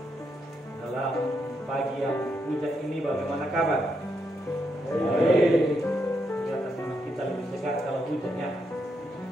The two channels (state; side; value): normal; both; correlation 0.80